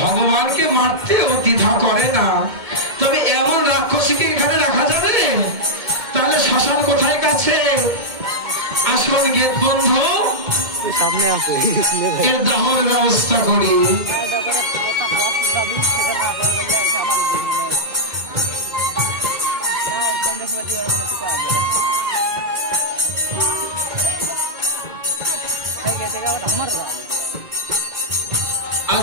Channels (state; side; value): late; left; 2.2 ms